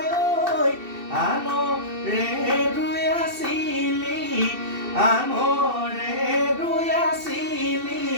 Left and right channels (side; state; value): left; late; 2.7 ms